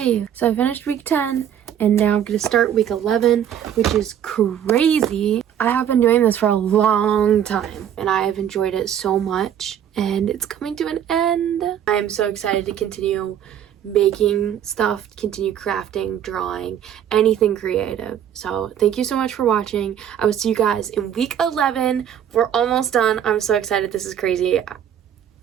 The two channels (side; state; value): left; quieter; 9.6 dB